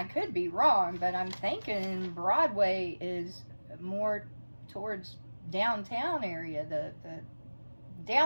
could be wrong, but I'm thinking Broadway is more towards downtown area, the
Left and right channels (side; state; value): both; inverted; correlation -1.00